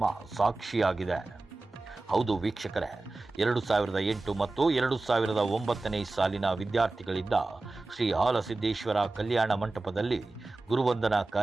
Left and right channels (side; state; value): left; quieter; 3.2 dB